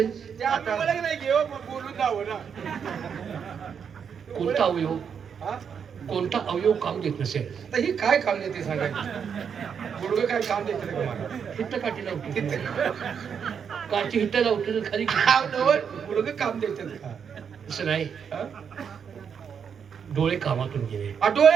ते आता मला नाही घेऊ, मग बोलून जावं ना. कोणता अवयव, हा? कोणता अवयव काम देत नसेल? तर ही काय काम देते सांगायचं? गुडघं काय काम देते रे तुम्हाला? हिट्ट काठी लावते. काठी हिट्ट लावते तर खाली. गुडघं काम देते का? तसं नाही. हा? डोळे कामातून गेले.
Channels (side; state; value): left; quieter; 7.1 dB